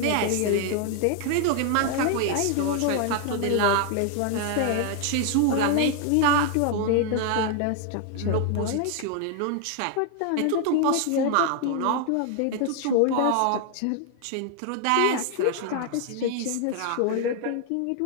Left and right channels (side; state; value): both; different; correlation 0.00